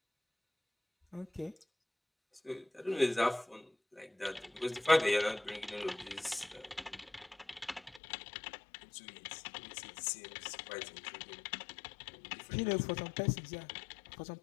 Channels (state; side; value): drops out; right; at 8.0 s